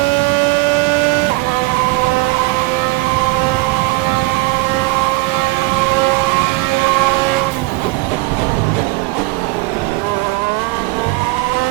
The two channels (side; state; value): left; quieter; 23.1 dB